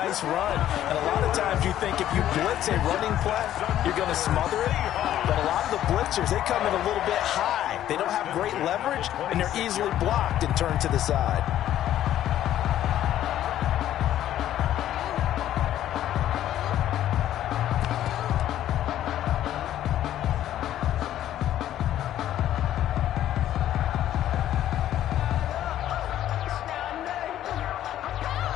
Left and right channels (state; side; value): quieter; right; 12.1 dB